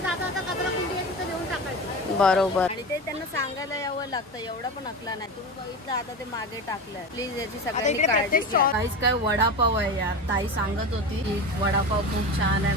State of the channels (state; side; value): normal; both; correlation 0.26